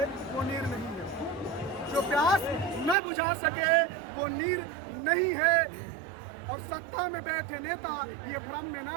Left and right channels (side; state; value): left; drops out; at 3.0 s